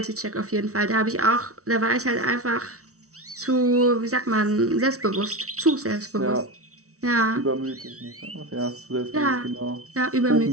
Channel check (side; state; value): left; late; 0.65 ms